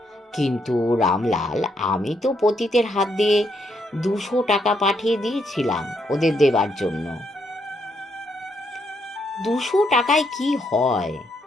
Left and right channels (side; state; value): both; normal; correlation 0.76